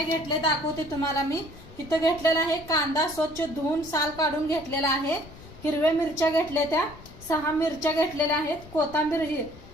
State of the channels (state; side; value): noise; left; rumble, 18 dB below the sound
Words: घेतले दाखवते तुम्हाला मी। इथं घेतलेला आहे कांदा, स्वच्छ धुवून साल काढून घेतलेला आहे। हिरव्या मिरच्या घेतल्या, त्या 6 मिरच्या घेतलेल्या आहेत। कोथिंबीर,